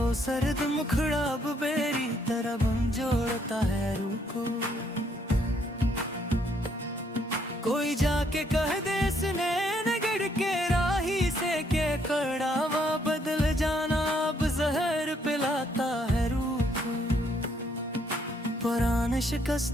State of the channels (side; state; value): both; normal; correlation 0.70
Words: सर्द मुखड़ा अब बेरी तरह बन जोड़ता है रूह को। कोई जाके कह दे इसने नगड़ के राही से के कड़ावा बदल जाना अब जहर पिलाता है रूह को। पुराने